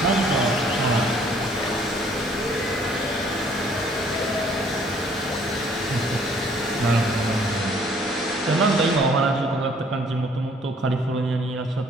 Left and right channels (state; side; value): normal; both; correlation 0.60